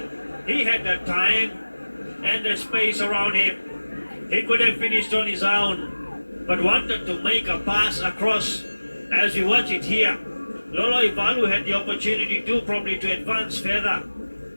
he had the time and the space around him. He could have finished on his own, but wanted to make a pass across. As we watch it here, Lolo Ivalu had the opportunity to probably to advance further,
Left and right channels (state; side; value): inverted; both; correlation -1.00